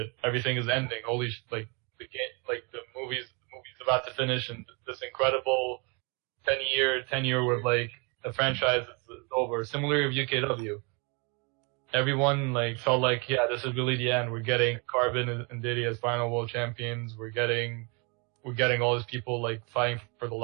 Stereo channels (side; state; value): left; quieter; 32.1 dB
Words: everything is ending. Holy shit, the movie's about to finish, and this incredible 10-year where the franchise is over. Similarly with UKW, everyone felt yeah, this is really the end. We're getting Carbon and Diddy as final world champions. We're getting all these people fighting for the